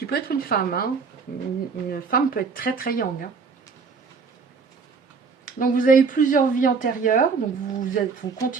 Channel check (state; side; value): quieter; left; 5.1 dB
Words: peut être une femme. Hein. Une femme peut être très très young. Hein. Donc vous avez plusieurs vies antérieures, donc vous